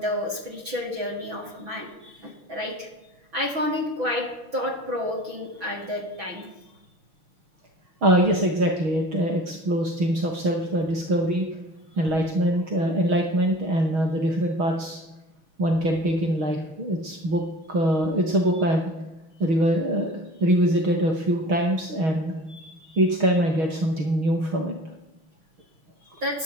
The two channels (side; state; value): left; late; 6.1 ms